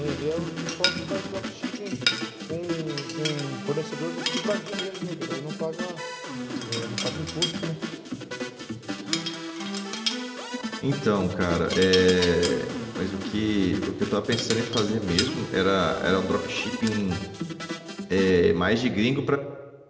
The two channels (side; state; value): both; identical; correlation 1.00